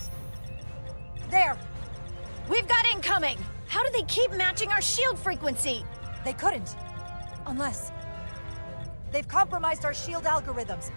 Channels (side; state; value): both; inverted; correlation -1.00